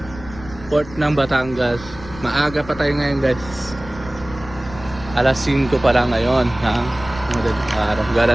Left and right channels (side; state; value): left; noise; rumble, 16 dB below the sound